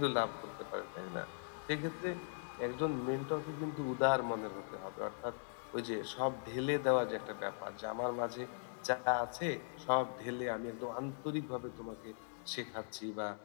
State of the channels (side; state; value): right; silent; digital silence